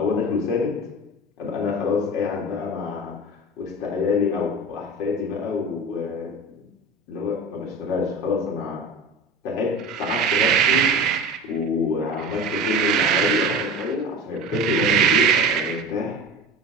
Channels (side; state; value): both; normal; correlation 0.33